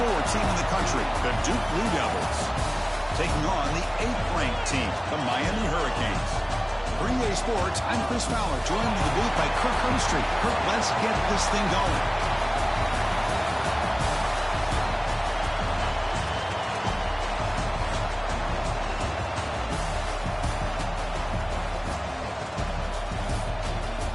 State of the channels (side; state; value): both; identical; correlation 1.00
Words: team in the country, the Duke Blue Devils, taking on the 8th-ranked team, the Miami Hurricanes. For EA Sports, I'm Chris Fowler, joined in the booth by Kirk Herbstreit. Kirk, let's get this thing going.